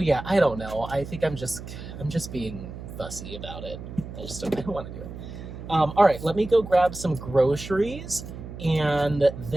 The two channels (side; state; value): right; noise; hum, 11 dB below the sound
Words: I don't know. I think I'm just being fussy about it. I don't want to do it. All right, let me go grab some groceries, and